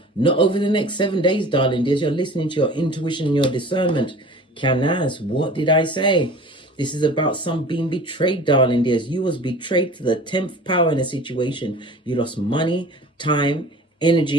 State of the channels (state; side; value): normal; both; correlation 0.42